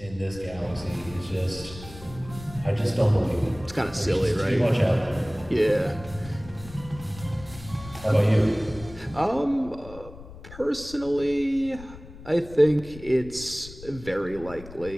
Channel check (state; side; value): noise; left; rumble, 16 dB below the sound